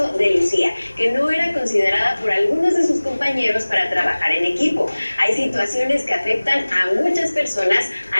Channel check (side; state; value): both; inverted; correlation -1.00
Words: de Lucía, que no era considerada por algunos de sus compañeros para trabajar en equipo. Hay situaciones que afectan a muchas personas,